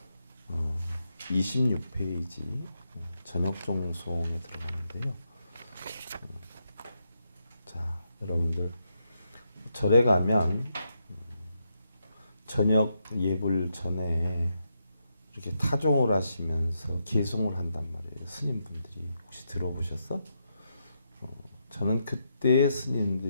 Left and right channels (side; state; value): both; inverted; correlation -0.83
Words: 26페이지 저녁종송에 들어가는데요. 자, 여러분들 절에 가면 저녁 예불 전에 이렇게 타종을 하시면서 개송을 한단 말이에요. 스님분들이 혹시 들어보셨어? 저는 그때